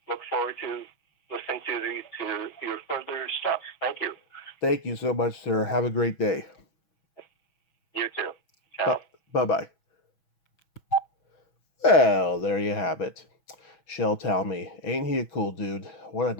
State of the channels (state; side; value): late; right; 6.2 ms